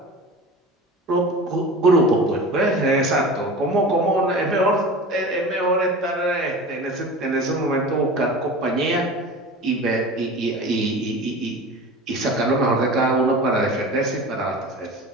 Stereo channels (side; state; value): both; normal; correlation 0.35